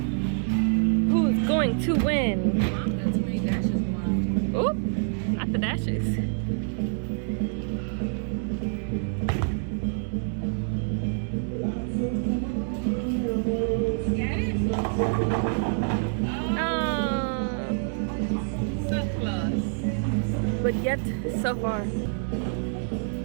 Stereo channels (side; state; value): left; silent; 60 dB below the other